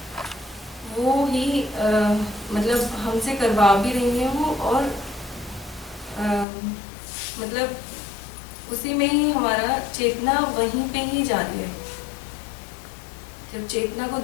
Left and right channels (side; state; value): right; drops out; at 6.5 s